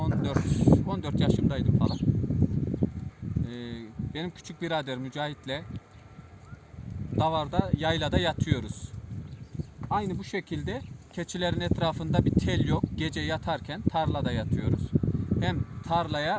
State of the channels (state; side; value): identical; both; correlation 1.00